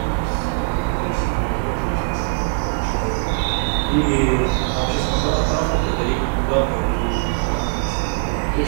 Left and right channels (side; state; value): left; silent; 64 dB below the other